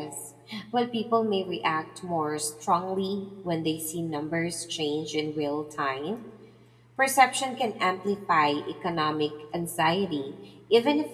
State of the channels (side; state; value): both; identical; correlation 1.00